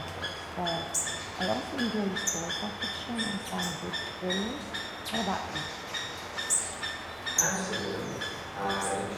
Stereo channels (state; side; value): identical; both; correlation 1.00